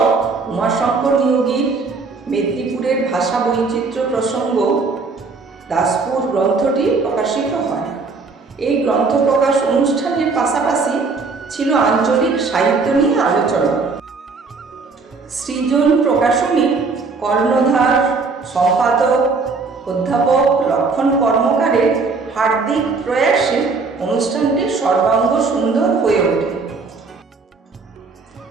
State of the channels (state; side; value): quieter; left; 4.3 dB